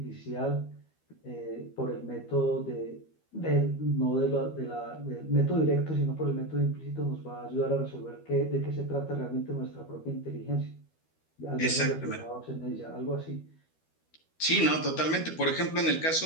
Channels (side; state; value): right; late; 13 ms